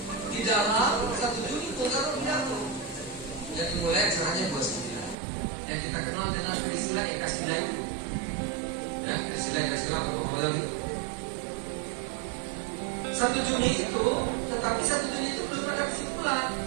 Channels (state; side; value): drops out; left; at 5.2 s